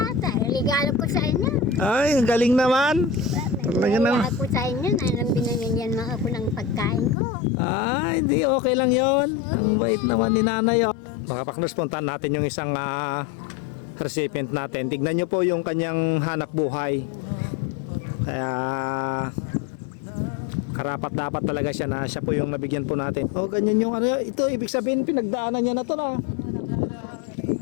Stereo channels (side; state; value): right; drops out; at 7.2 s